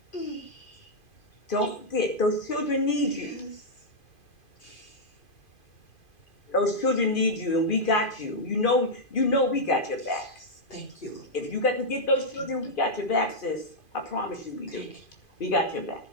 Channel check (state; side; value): late; right; 2.5 ms